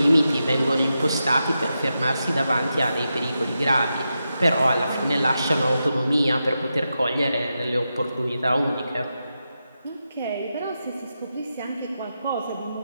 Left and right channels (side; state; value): both; inverted; correlation -0.88